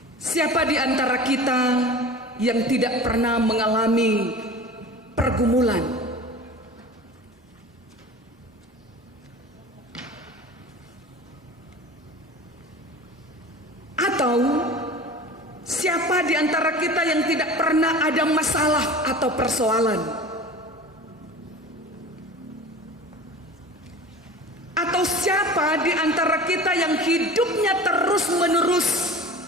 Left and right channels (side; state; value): both; normal; correlation 0.37